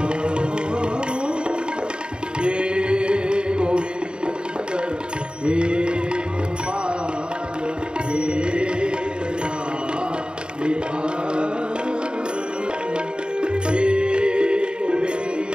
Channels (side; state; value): left; late; 0.050 ms